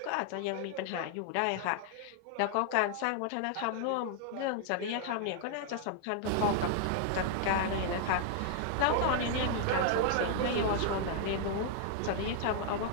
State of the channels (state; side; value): different; both; correlation -0.01